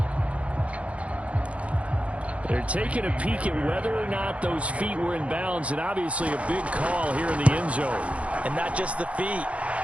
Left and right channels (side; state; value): left; late; 0.063 ms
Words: They're taking a peek at whether or not those feet were in bounds, and obviously a big call here in the end zone. And not just the feet.